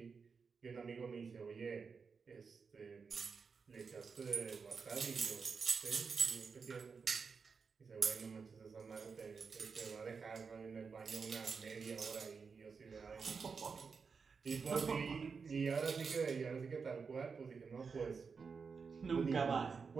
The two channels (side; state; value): left; quieter; 5.3 dB